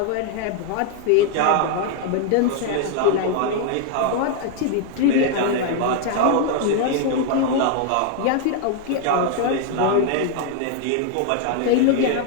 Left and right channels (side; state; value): both; different; correlation 0.00